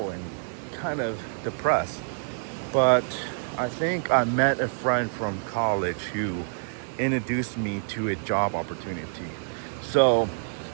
and kind of depressed. But I think I met a friend from college who introduced me to a job opportunity. So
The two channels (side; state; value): left; silent; 60 dB below the other